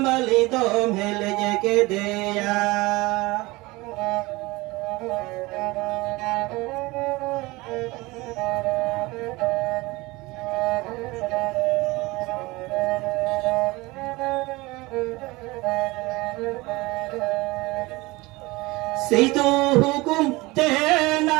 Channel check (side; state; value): left; quieter; 22.1 dB